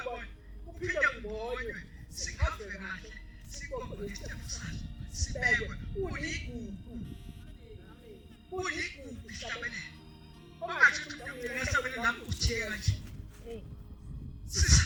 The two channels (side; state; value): both; identical; correlation 1.00